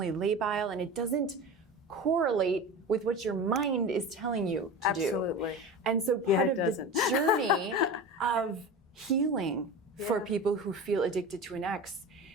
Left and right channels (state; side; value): normal; both; correlation 0.30